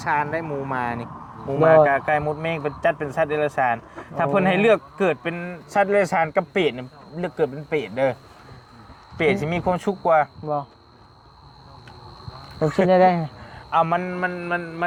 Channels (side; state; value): both; identical; correlation 1.00